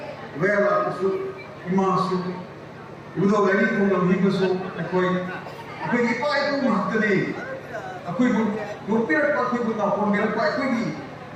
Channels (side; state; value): both; identical; correlation 1.00